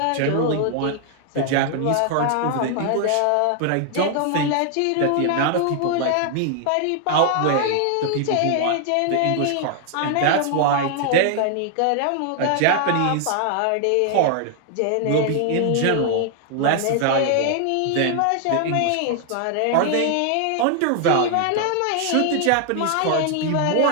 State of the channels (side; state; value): both; different; correlation 0.00